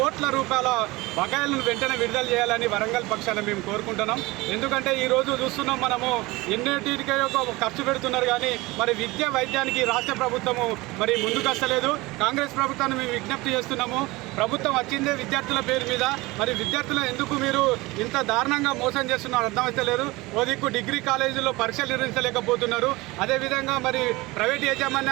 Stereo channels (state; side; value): quieter; left; 21.6 dB